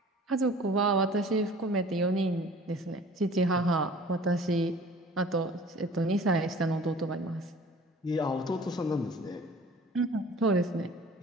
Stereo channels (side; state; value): both; normal; correlation 0.47